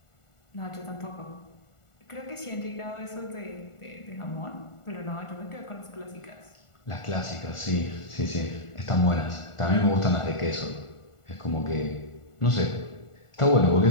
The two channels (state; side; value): late; right; 1.4 ms